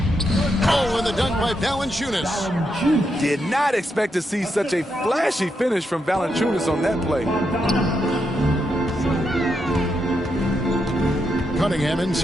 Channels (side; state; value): both; normal; correlation 0.82